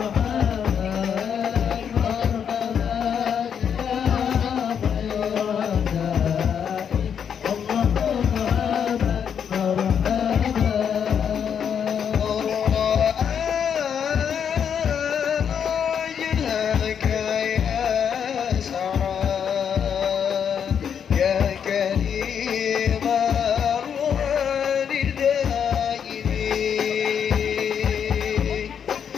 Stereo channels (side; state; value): right; quieter; 7.8 dB